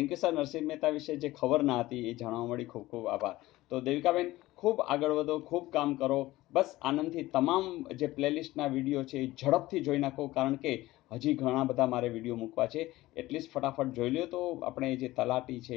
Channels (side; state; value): right; quieter; 17.7 dB